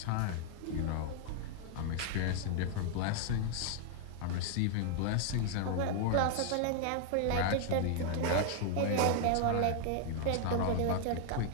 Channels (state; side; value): different; both; correlation 0.00